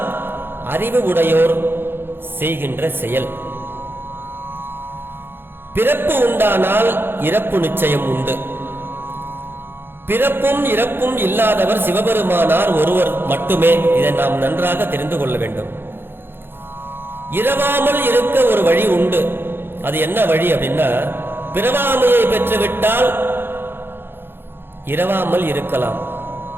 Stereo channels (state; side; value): late; left; 0.10 ms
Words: அறிவு உடையோர் செய்கின்ற செயல். பிறப்பு உண்டானால் இறப்பு நிச்சயம் உண்டு. பிறப்பும் இறப்பும் இல்லாதவர் சிவபெருமானார் ஒருவர் மட்டுமே. இதை நாம் நன்றாக தெரிந்து கொள்ள வேண்டும். இரவாமல் இருக்க ஒரு வழி உண்டு. அது என்ன வழி அப்படின்னா, பிறவாமையை பெற்றுவிட்டால் இரவாமல் இருக்கலாம்.